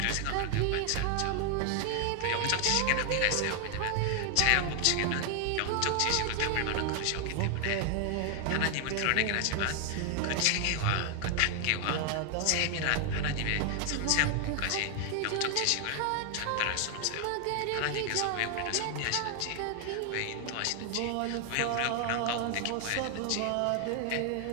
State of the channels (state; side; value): different; both; correlation 0.00